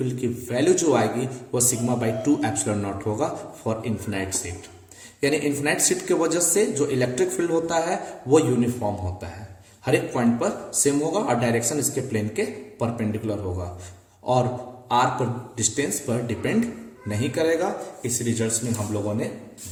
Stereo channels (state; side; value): identical; both; correlation 1.00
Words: की वैल्यू जो आएगी वो सिग्मा बाई 2 एप्सिलॉन नॉट होगा फॉर इन्फिनाइट शीट। यानी इन्फिनाइट शीट की वजह से जो इलेक्ट्रिक फील्ड होता है वो यूनिफॉर्म होता है, हर एक पॉइंट पर सेम होगा और डायरेक्शन इसके प्लेन के परपेंडिकुलर होगा और r पर डिस्टेंस पर डिपेंड नहीं करेगा। इस रिजल्ट्स में हम लोगों ने